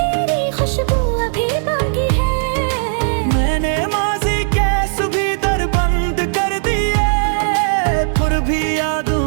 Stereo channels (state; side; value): silent; left; 68 dB below the other